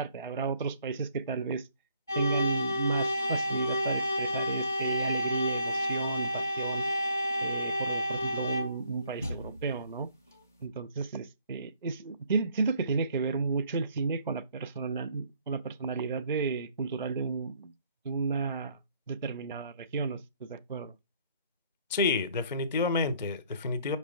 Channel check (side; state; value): both; inverted; correlation -0.64